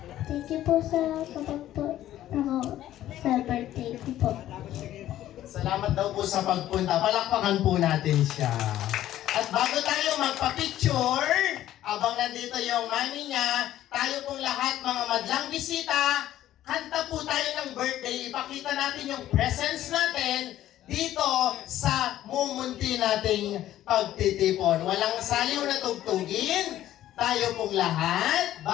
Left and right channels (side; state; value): right; quieter; 13.1 dB